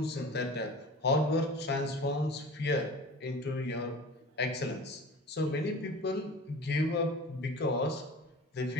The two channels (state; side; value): normal; both; correlation 0.38